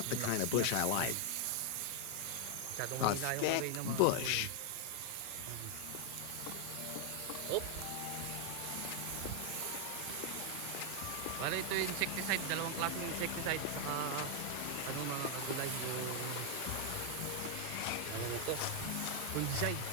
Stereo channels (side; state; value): both; different; correlation 0.00